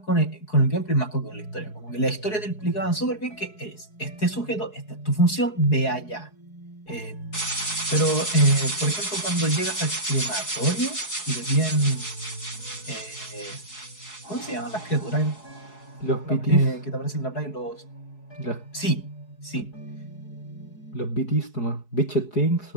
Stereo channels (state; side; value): late; right; 4.7 ms